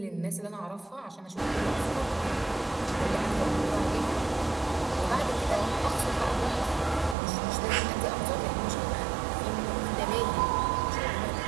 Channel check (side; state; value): left; drops out; at 7.2 s